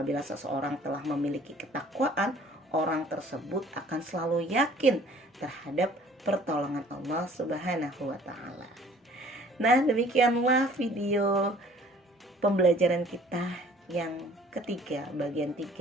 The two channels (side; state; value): both; normal; correlation 0.54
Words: seseorang telah memiliki ketakwaan, orang tersebut akan selalu yakin terhadap pertolongan Allah Subhanahu wa taala. Nah, demikianlah video pembelajaran kita yang ketiga, bagian